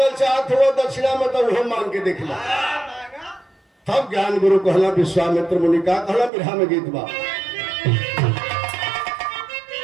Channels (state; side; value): drops out; left; at 6.3 s